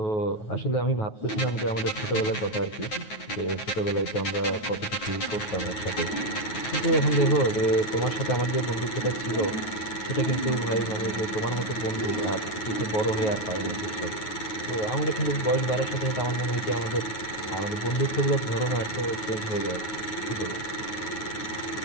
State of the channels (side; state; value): right; late; 9.4 ms